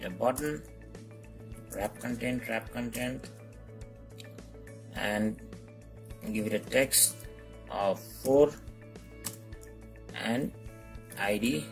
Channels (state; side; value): identical; both; correlation 1.00